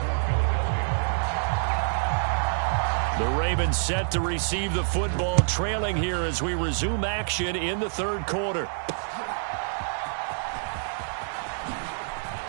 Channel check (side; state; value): left; silent; digital silence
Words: The Ravens set to receive the football, trailing here as we resume action in the 3rd quarter.